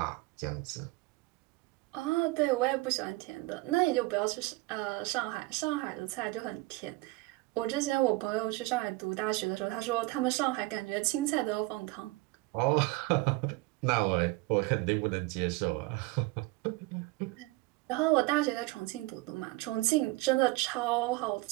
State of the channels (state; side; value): quieter; left; 22.2 dB